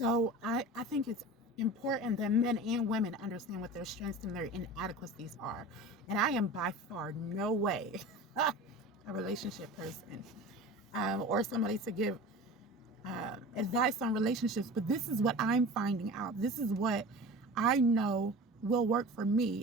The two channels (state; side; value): normal; both; correlation 0.36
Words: I think it's important that men and women understand what their strengths and their inadequacies are. And I am by far no way a relationship person, or somebody to give advice on relationships, but this is what I'm finding out. This is what I know will work for